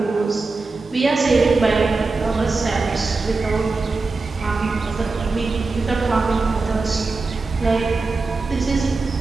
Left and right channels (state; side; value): quieter; left; 3.9 dB